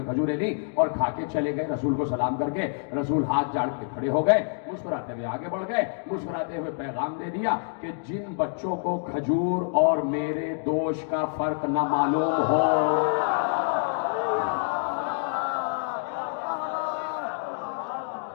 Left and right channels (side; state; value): right; silent; digital silence